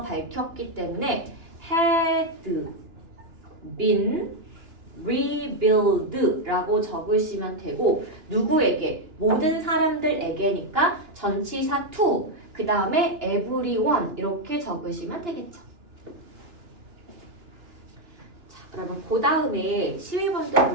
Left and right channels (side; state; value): left; late; 2.9 ms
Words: 밝혔기 때문에 had been rebuild 라고 적으시면 되고 누구에게? 모든 사람들에게니까 전치사 to 그 다음에 everyone 이렇게 적으시면 되겠죠. 자, 그러면 그 다음에 12번도